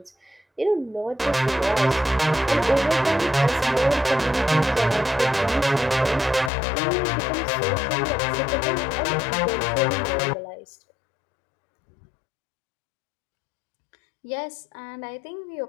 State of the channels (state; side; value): drops out; right; at 6.5 s